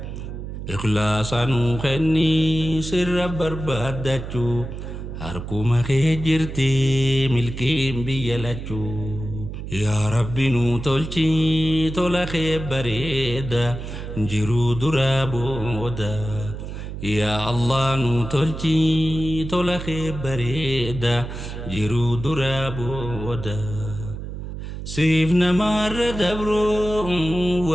ikhlaasa nuu kennii sirra barbaadachuu harkuma kee jirti milkiin biyya lachuu. Yaa Rabbi nuu tolchi tola kee bareeda jiruu duraa booda. Yaa Allah nuu tolchi tola kee bareeda jiruu duraa booda. Siif namarra dabroo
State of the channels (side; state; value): right; noise; hum, 8 dB below the sound